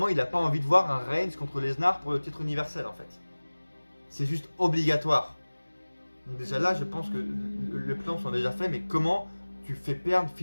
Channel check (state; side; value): inverted; both; correlation -1.00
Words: il a pas envie de voir un Reigns contre Lesnar pour le titre universel en fait. C'est juste obligatoire. Donc déjà là je pense que le plan sont déjà faits, mais comment tu fais perdre